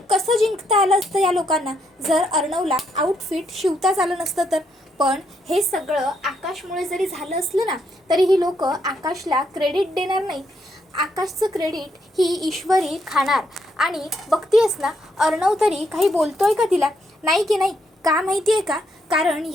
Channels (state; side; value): normal; both; correlation 0.76